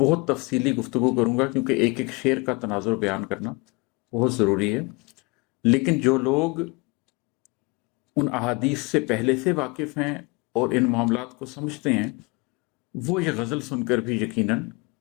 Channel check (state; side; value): quieter; right; 27.9 dB